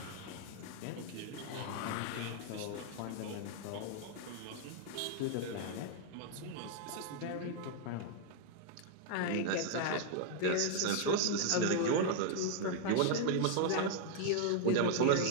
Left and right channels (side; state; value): both; different; correlation 0.00